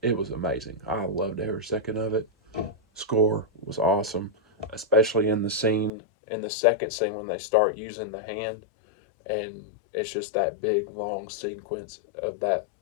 It was amazing. I loved every second of it. Score was awesome, especially in the second scene when they start using the hand, and it's just that big long sequence of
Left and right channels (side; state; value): right; drops out; at 5.9 s